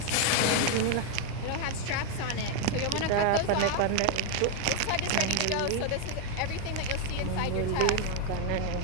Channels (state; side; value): different; both; correlation 0.01